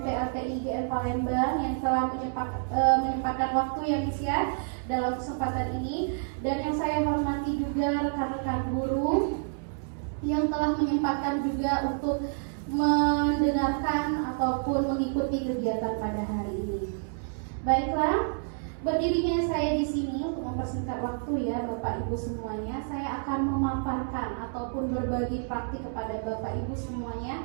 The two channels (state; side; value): silent; left; 59 dB below the other